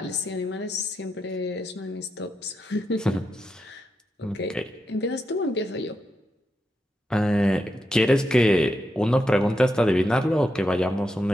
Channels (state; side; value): normal; both; correlation 0.85